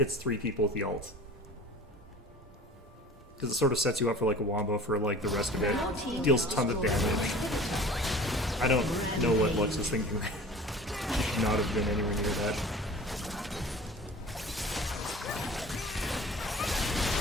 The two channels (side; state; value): both; normal; correlation 0.42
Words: 3 people with the ult. Because it sort of sets you up for, like, a wombo for, like, the rest of it. Deals tons of damage. I don't know what Lux was thinking. Should not have been anywhere near that.